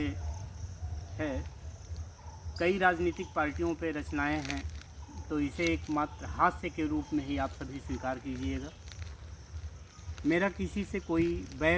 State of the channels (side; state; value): both; identical; correlation 1.00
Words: है। कई राजनीतिक पार्टियों पे रचनाएं हैं, तो इसे एक मात्र हास्य के रूप में ही आप सभी स्वीकार कीजिएगा। मेरा किसी से कोई